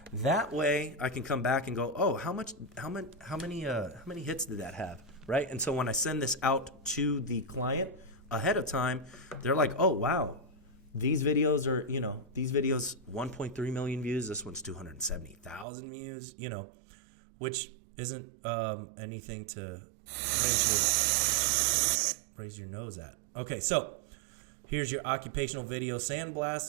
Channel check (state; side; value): drops out; left; at 15.7 s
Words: That way, I can come back and go, oh, how many hits did that have? Right? And so when I send this out to the client ahead of time, they're like, oh, wow, these videos are, 1.3 million views. This one's 270,000 views, which isn't anything to raise your raise your nose at? Okay, so here's your occupational video